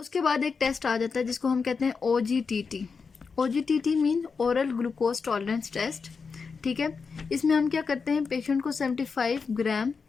बाद एक टेस्ट आ जाता है जिसको हम कहते हैं OGTT। OGTT mean oral glucose tolerance test. ठीक है। इसमें हम क्या करते हैं, पेशेंट को 75 ग्राम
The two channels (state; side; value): quieter; right; 5.2 dB